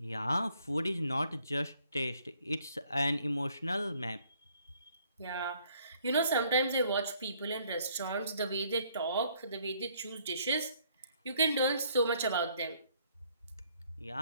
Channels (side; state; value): both; inverted; correlation -0.65